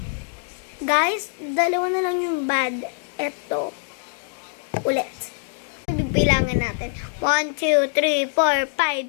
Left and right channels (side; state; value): right; silent; 60 dB below the other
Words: Guys, dalawa na lang yung bad. Ito. Ulit. Bibilangan natin. 1, 2, 3, 4,